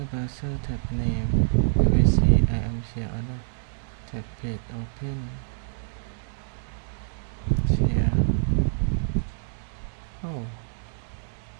browser tab name. You will see I am share order. tag page open share. Oh,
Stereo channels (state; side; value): silent; left; digital silence